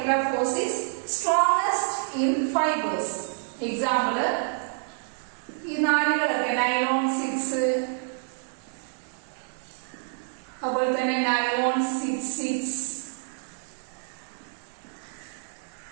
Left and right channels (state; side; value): silent; left; digital silence